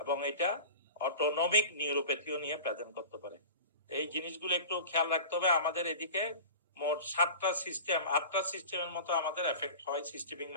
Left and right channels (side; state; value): both; inverted; correlation -0.35